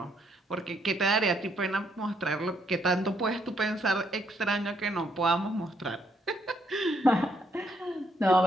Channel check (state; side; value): normal; both; correlation 0.72